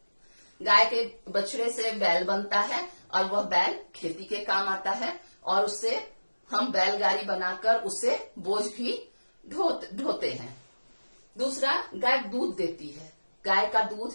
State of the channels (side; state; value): both; inverted; correlation -1.00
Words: गाय के बछड़े से बैल बनता है और वह बैल खेती के काम आता है और उससे हम बैलगाड़ी बनाकर उससे बोझ भी ढोते हैं। दूसरा, गाय दूध देती है। गाय का दूध